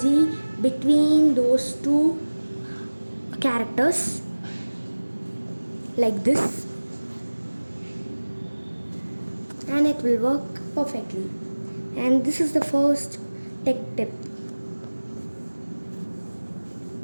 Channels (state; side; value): inverted; both; correlation -1.00